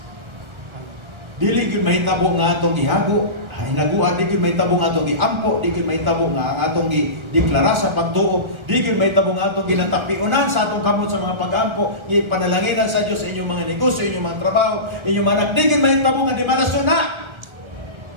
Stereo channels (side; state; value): left; late; 1.4 ms